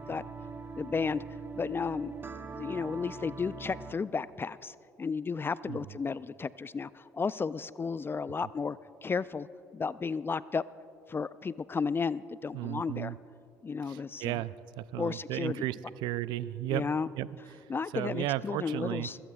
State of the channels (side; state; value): both; normal; correlation 0.65